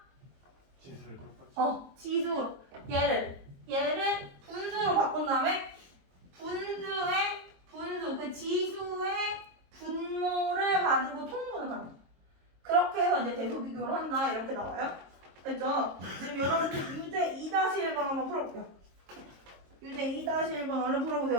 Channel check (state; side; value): late; left; 22 ms